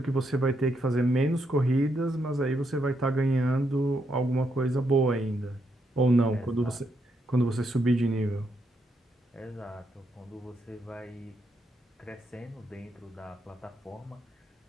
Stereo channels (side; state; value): both; normal; correlation 0.78